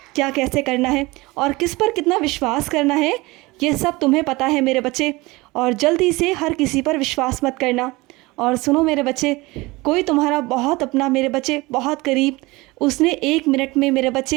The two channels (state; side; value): quieter; left; 22.3 dB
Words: क्या कैसे करना है और किस पर कितना विश्वास करना है। ये सब तुम्हें पता है मेरे बच्चे। और जल्दी से हर किसी पर विश्वास मत करना। और सुनो मेरे बच्चे, कोई तुम्हारा बहुत अपना मेरे बच्चे, बहुत करीब, उसने 1 मिनट में मेरे